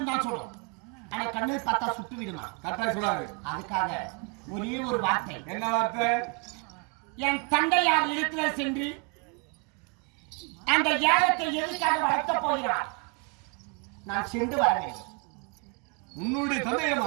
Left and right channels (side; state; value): left; quieter; 32.9 dB